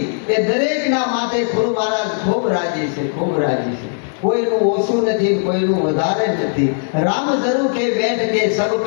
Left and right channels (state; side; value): silent; right; digital silence